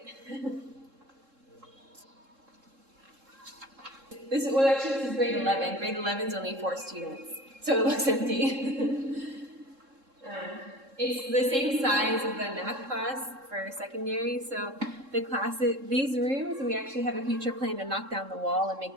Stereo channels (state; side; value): late; left; 3.7 ms